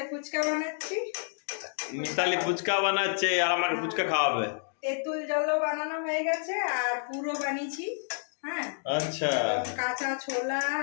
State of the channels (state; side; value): silent; right; digital silence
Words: ফুচকা বানাচ্ছি। মিতালি ফুচকা বানাচ্ছে আর আমাকে ফুচকা খাওয়াবে। তেঁতুল জলও বানানো হয়ে গেছে আর পুরো বানিয়েছি। হ্যাঁ, আচ্ছা, কাঁচা ছোলা